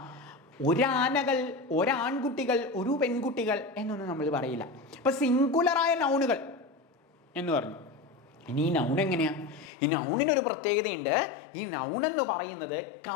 ഒരാനകൾ, ഒരാൺകുട്ടികൾ, ഒരു പെൺകുട്ടികൾ എന്നൊന്നും നമ്മൾ പറയില്ല. അപ്പൊ സിംഗുലറായ നൗണുകൾ എന്ന് പറഞ്ഞു. ഇനി ഈ നൗൺ എങ്ങനെയാ? ഈ നൗണിനൊരു പ്രത്യേകതയുണ്ട്. ഈ നൗൺ എന്ന് പറയുന്നത്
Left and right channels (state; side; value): drops out; right; at 9.7 s